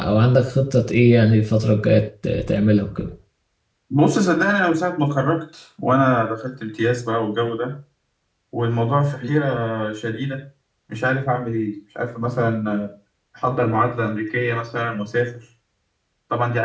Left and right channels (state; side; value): identical; both; correlation 1.00